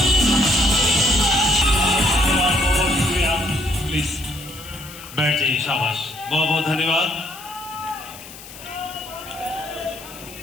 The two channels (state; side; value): noise; left; hiss, 16 dB below the sound